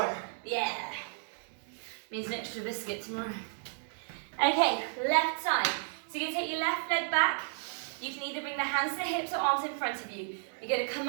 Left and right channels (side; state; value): left; silent; digital silence